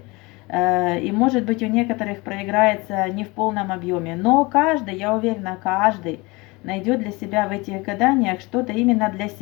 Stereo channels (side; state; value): right; quieter; 24.7 dB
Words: и может быть у некоторых проиграется не в полном объеме, но каждый, я уверена, каждый найдет для себя в этих гаданиях что-то именно для